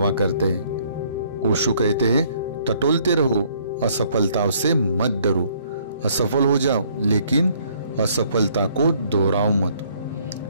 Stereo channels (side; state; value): both; inverted; correlation -0.63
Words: करते हैं। ओशो कहते हैं, टटोलते रहो, असफलताओं से मत डरो। असफल हो जाओ लेकिन असफलता को दोहराओ मत।